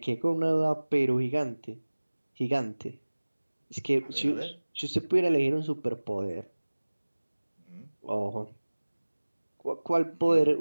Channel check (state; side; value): inverted; both; correlation -1.00